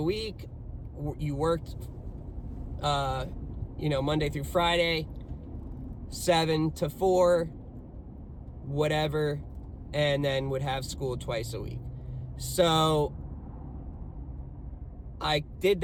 You worked Monday through Friday, 7 to 4, whatever, and then would have school twice a week. So I did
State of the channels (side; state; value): both; identical; correlation 1.00